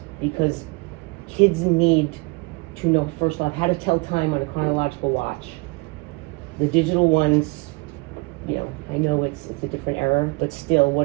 because kids need to know, first off, how to tell time on a chronological watch. The digital ones, you know, I know it's a different era, but still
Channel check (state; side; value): quieter; left; 28.0 dB